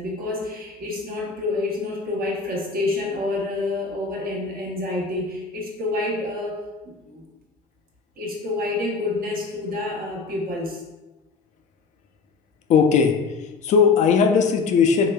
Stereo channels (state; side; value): quieter; right; 4.6 dB